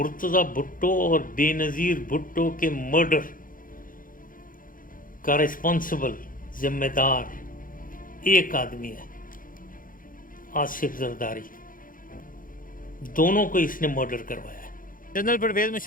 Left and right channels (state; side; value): late; right; 0.40 ms